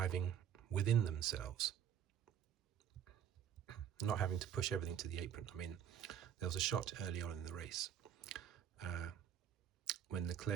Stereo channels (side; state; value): left; quieter; 9.2 dB